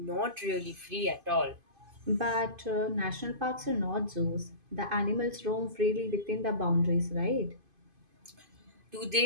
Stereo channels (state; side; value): late; left; 2.5 ms